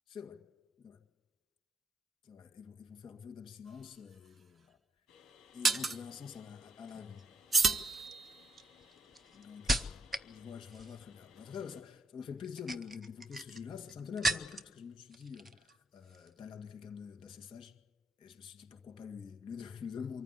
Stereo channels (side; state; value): both; normal; correlation 0.81